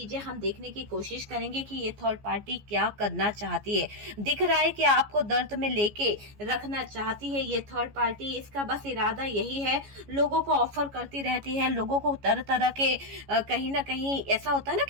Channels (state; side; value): late; left; 14 ms